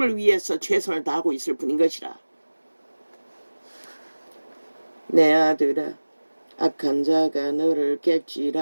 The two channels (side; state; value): both; inverted; correlation -1.00